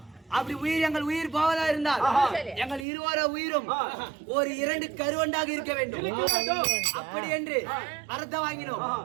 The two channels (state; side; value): drops out; left; at 2.9 s